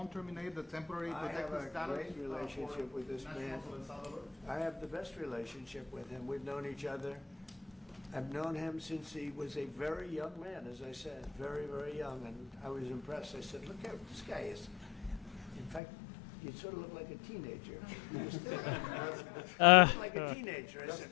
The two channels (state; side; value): drops out; right; at 15.8 s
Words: terminate the temporary I have protected a status. great relationship with this man. I have the best relationship with him. We've known each other. I've known him since he was a very young man, as I said, very, very young, and I was impressed. I said, look how this guy is. In fact, you sort of look like a teenager. You still look like a teenager. I said,